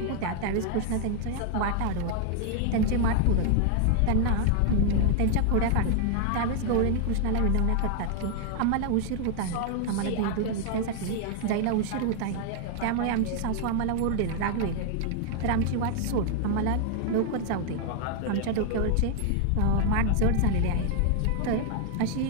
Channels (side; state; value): both; different; correlation 0.00